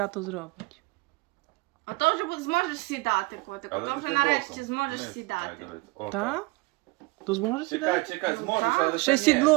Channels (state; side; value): quieter; left; 24.8 dB